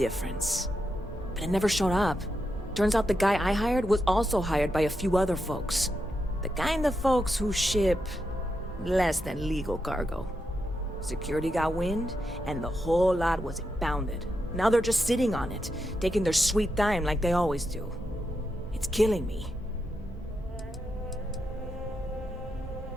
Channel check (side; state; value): both; normal; correlation 0.85